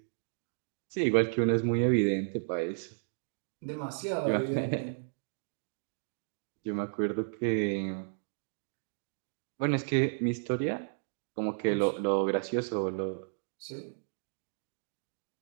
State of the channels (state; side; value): silent; left; digital silence